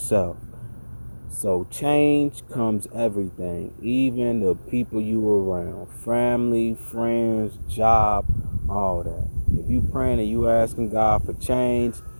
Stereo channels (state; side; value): inverted; both; correlation -1.00